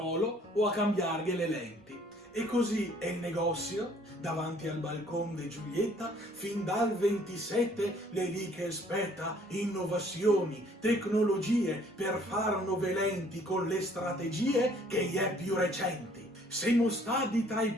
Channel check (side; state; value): both; normal; correlation 0.59